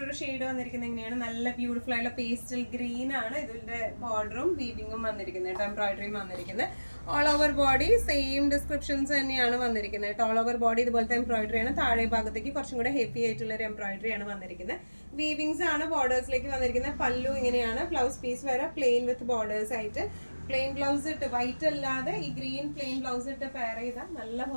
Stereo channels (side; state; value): both; inverted; correlation -1.00